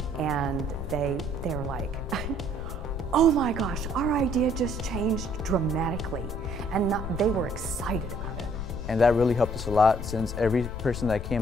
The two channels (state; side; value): noise; left; rumble, 6 dB below the sound